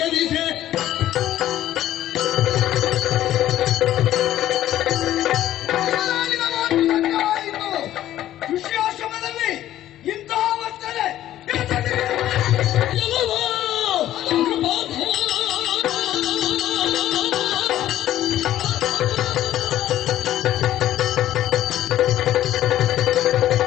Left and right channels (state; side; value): quieter; right; 13.0 dB